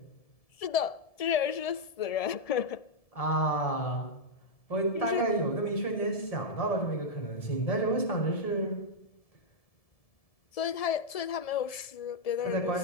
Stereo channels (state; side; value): late; right; 1.7 ms